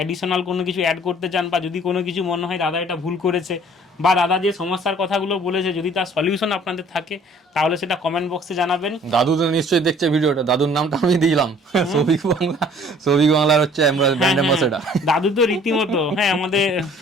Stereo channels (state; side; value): normal; both; correlation 0.54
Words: কোনো কিছু অ্যাড করতে চান, বা যদি কোনো কিছু মনে হয় দাদা এটা ভুল করেছে, বা দাদা যে সমস্যার কথাগুলো বলেছে যদি তার সলিউশন আপনাদের থাকে, তাহলে সেটা কমেন্ট বক্সে জানাবেন। দাদু তো নিশ্চয়ই দেখছে ভিডিওটা, দাদুর নামটা আমি দিলাম, সৌভিক বাংলা। সৌভিক বাংলার হচ্ছে ব্র্যান্ড অ্যাম্বাসেডর। দাদু তো রীতিমতো, হ্যাঁ, আমাদের